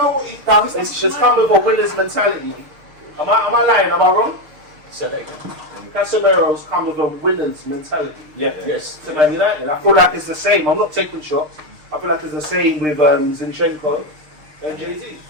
It's come with a winner's mentality. Am I lying? Am I wrong? So there you go. Casemiro's come with a winner's mentality. Yes. To Man United. I feel like it's the same. I'm not taking shots. I feel like it's the same with Zinchenko and Jay-Z.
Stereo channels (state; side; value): late; left; 6.6 ms